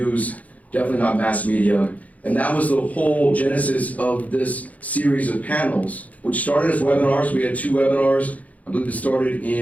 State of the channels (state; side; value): late; right; 0.072 ms